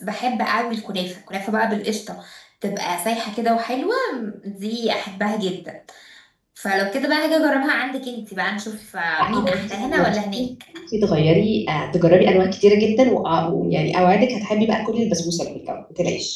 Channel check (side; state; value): both; identical; correlation 1.00